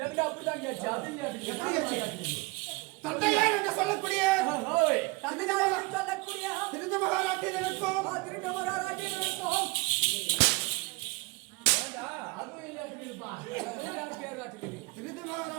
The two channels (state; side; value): quieter; left; 25.6 dB